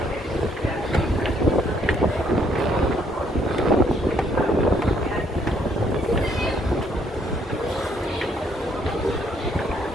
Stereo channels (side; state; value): both; normal; correlation 0.68